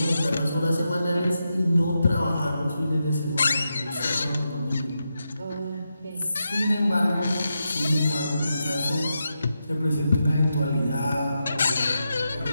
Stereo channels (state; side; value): inverted; both; correlation -0.87